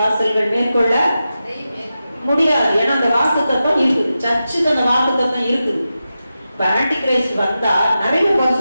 மேற்கொள்ள முடியாது. ஏன்னா அந்த வாக்கு தத்துவம் இருக்குது, சர்ச்சுக்கு அந்த வாக்கு தத்துவம் இருக்குது. இப்ப ஆன்டி கிரைஸ்ட் வந்தா நிறைய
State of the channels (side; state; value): both; inverted; correlation -0.91